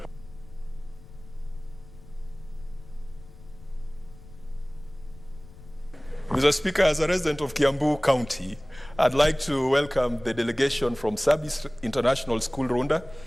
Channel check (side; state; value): left; noise; rumble, 19 dB below the sound